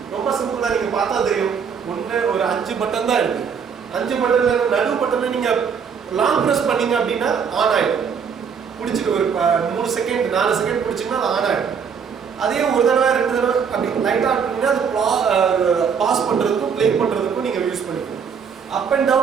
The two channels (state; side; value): quieter; left; 6.6 dB